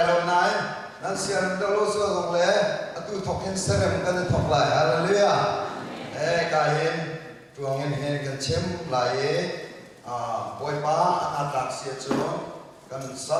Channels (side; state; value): both; identical; correlation 1.00